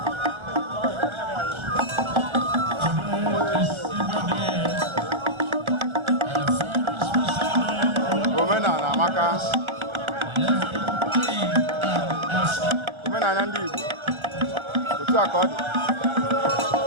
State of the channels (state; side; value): late; left; 1.4 ms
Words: Omenala amaka. Omenala ndị Igbo. Otu a ka ọ dị.